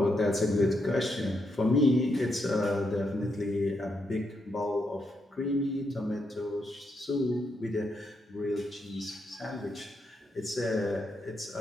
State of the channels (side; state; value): both; normal; correlation 0.81